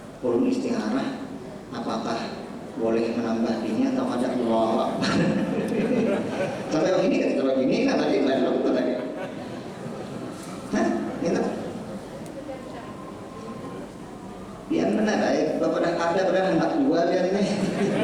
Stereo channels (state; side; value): identical; both; correlation 1.00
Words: perlu istikharah. Apakah boleh menambah ini atau ada Allah? Sampai begini kan, kalau begini kan tadi lain lakukan lagi. Hah? Gitu? Biar benar baik. Bapak dah ada pada hendak jual dia ini.